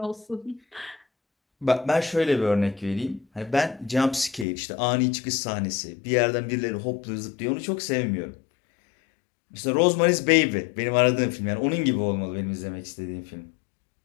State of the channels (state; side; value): drops out; right; at 4.5 s